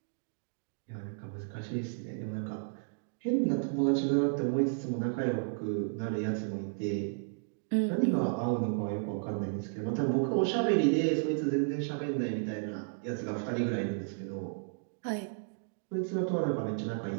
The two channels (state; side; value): silent; left; digital silence